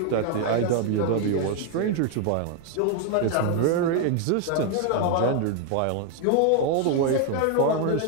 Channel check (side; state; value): both; different; correlation 0.01